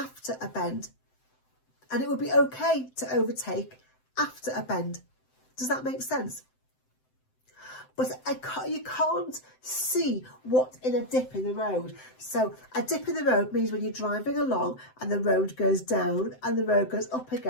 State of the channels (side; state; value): right; late; 7.8 ms